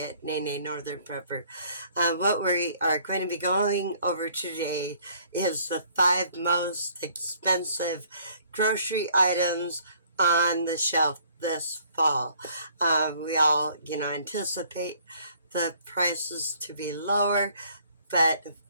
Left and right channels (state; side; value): inverted; both; correlation -0.60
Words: Nene Northern Prepper. What we are going to be going over today is the 5 most expensive grocery items on the shelf this fall. We all, anticipate the prices to be lower, but